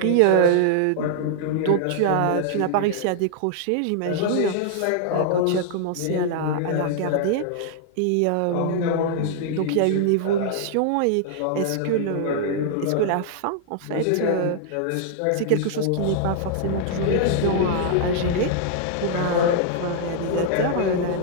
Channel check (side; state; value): both; different; correlation -0.01